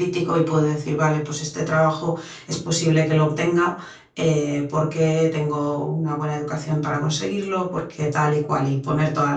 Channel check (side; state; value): both; identical; correlation 1.00